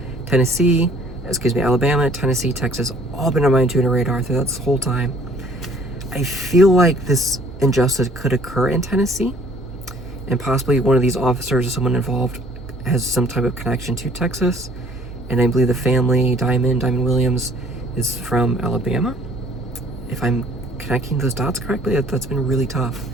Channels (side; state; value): right; noise; hum, 23 dB below the sound